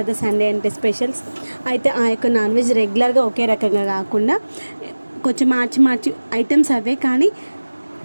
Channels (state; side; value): inverted; both; correlation -1.00